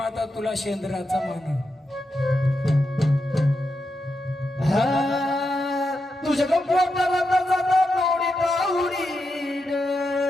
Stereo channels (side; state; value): both; normal; correlation 0.86